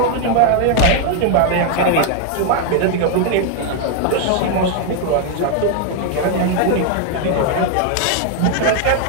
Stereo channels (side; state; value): both; different; correlation 0.00